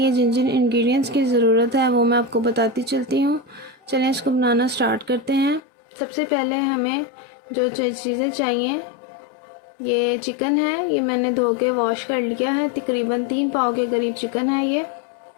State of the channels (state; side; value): drops out; right; at 5.6 s